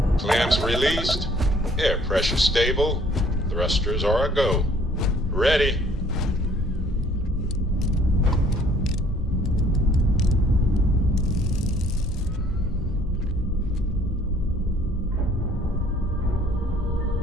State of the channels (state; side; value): normal; both; correlation 0.58